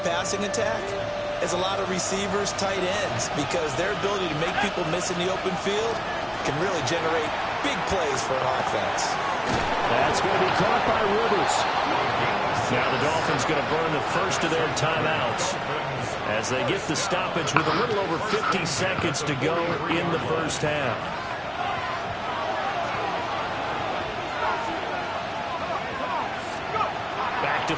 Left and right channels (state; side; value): identical; both; correlation 1.00